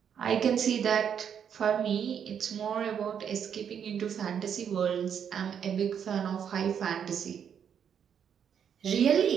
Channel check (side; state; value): left; quieter; 8.1 dB